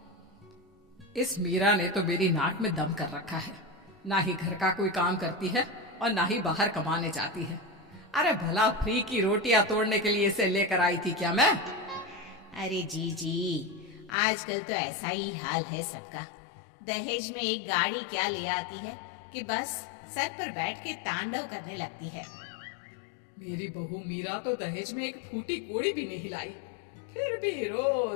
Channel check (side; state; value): right; drops out; at 14.1 s